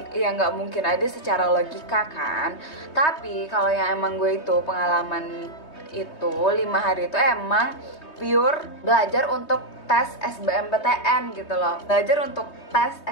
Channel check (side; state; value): right; late; 3.2 ms